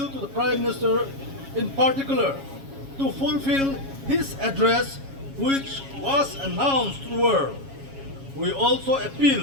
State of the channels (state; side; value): late; left; 7.3 ms